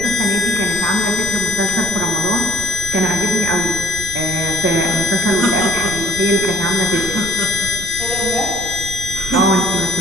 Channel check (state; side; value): noise; right; rumble, 12 dB below the sound